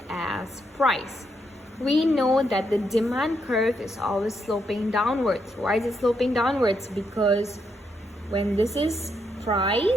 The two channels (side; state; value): both; normal; correlation 0.79